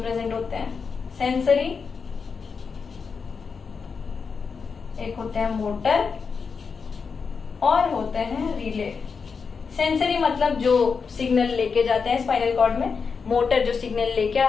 प्रेजेंट होते हैं। सेंसरी, एक होते हैं मोटर, और होते हैं रिले। सेंसरी मतलब जो सिग्नल लेके जाते हैं स्पाइनल कॉर्ड में, मोटर जो सिग्नल लेके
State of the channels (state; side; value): quieter; right; 5.4 dB